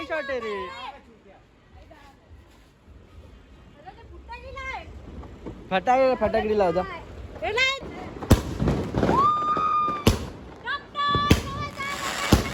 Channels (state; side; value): identical; both; correlation 1.00